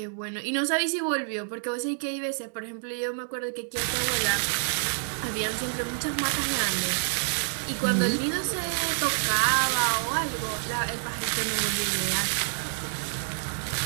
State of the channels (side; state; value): left; silent; digital silence